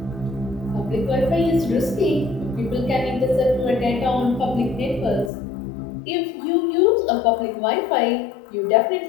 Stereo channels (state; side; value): drops out; right; at 5.3 s